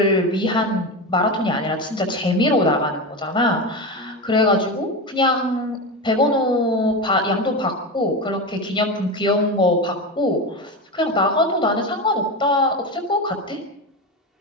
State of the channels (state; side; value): normal; both; correlation 0.20